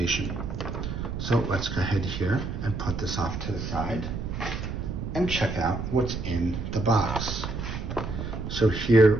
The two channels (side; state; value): right; noise; rumble, 5 dB below the sound